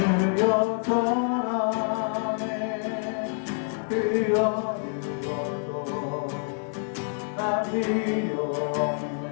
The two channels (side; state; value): right; silent; 55 dB below the other